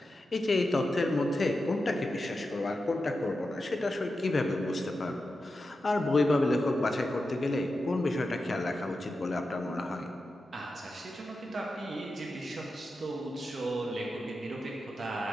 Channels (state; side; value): normal; both; correlation 0.90